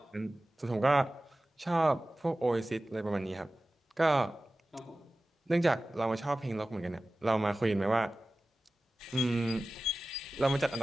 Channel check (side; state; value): both; normal; correlation 0.96